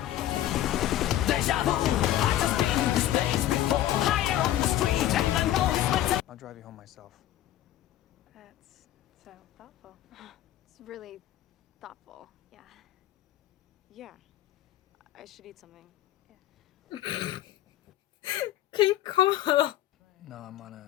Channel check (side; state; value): right; quieter; 13.0 dB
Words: I'll drive you home myself. That's so thoughtful. It's really thoughtful. Yeah. Yeah. I should eat something. Qué incómodo. No, I'm on